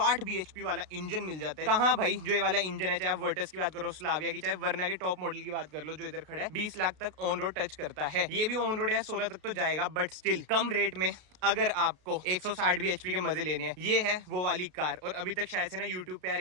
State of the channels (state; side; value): late; left; 33 ms